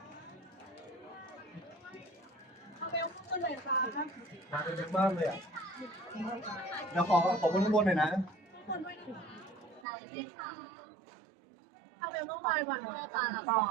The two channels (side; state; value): left; drops out; at 9.9 s